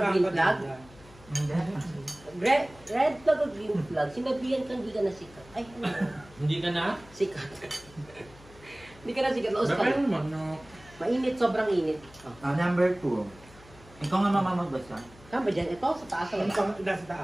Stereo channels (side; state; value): left; noise; hum, 22 dB below the sound